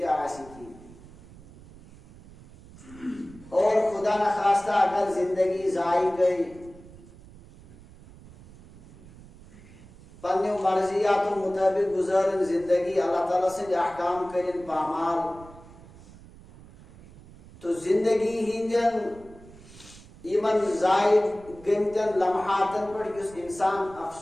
کی اور خدا نخواستہ اگر زندگی ضائع گئی پنہ مرضیات و مطابق گزارن زندگی اللہ تعالیٰ سے احکام کرن پامال تو زندگی ہندین ایمن ضائع گمتن لمحاتن پر اس انسان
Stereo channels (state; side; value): noise; right; rumble, 21 dB below the sound